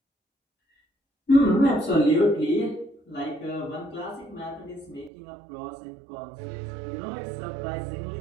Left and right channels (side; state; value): left; drops out; at 5.1 s